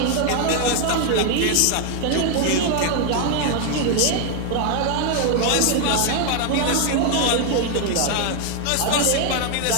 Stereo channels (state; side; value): different; both; correlation 0.01